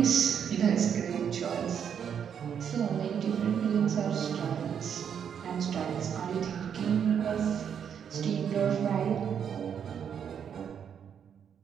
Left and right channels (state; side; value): quieter; left; 8.0 dB